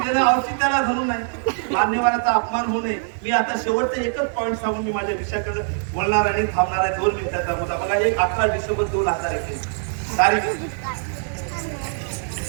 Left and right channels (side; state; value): left; silent; digital silence